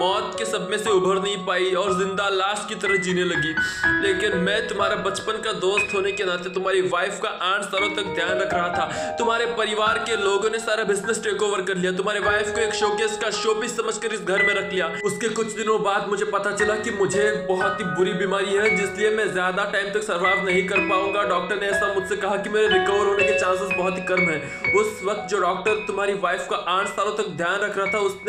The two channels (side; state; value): both; identical; correlation 1.00